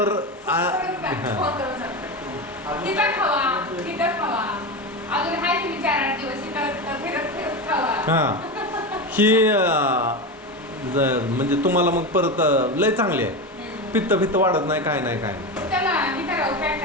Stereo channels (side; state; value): both; normal; correlation 0.19